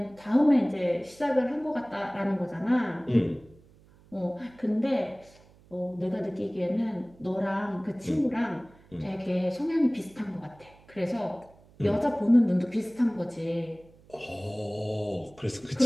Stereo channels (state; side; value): noise; right; hum, 27 dB below the sound